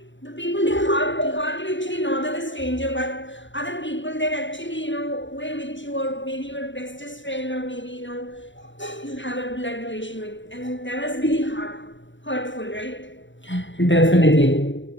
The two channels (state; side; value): late; right; 0.54 ms